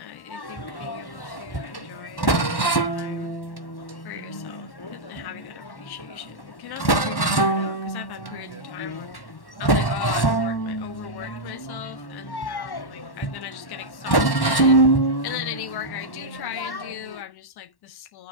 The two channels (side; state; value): right; late; 1.1 ms